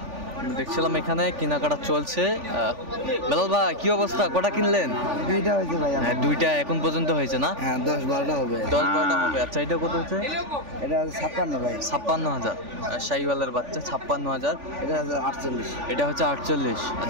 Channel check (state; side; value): late; left; 3.4 ms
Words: দেখছিলাম এখানে কেনাকাটা চলছে। বেলাল ভাই কি অবস্থা, কটা কিনলেন? 2টা হয়েছে ভাই। হ্যাঁ 2টা এখন পর্যন্ত হয়েছে না? হ্যাঁ 10-12টা হবে। 10-12টা হবে। আচ্ছা এটা কত হচ্ছে? এটা 56 ভাই। 56,000। শাহীওয়ালের বাচ্চা 56,000। এটা 48। এটা হচ্ছে 48।